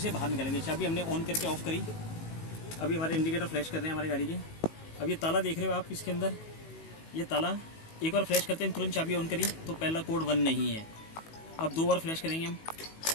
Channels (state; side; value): late; right; 19 ms